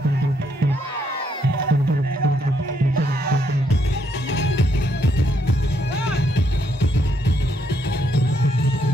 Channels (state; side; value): normal; both; correlation 0.74